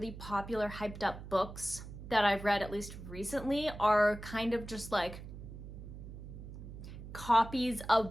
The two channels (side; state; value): right; noise; hum, 12 dB below the sound